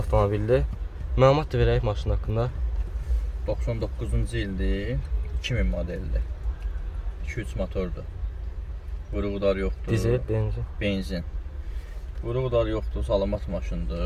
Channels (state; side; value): identical; both; correlation 1.00